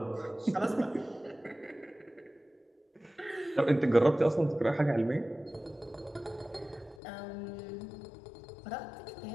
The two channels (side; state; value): right; drops out; at 7.0 s